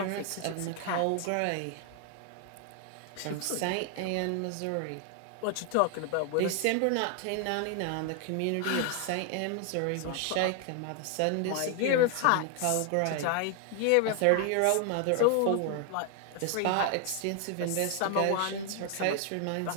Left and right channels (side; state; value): both; different; correlation 0.00